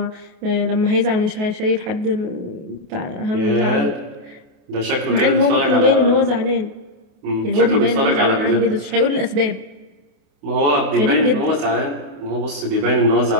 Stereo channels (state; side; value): late; left; 28 ms